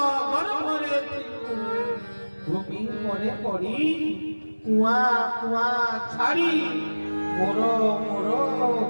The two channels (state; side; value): inverted; both; correlation -1.00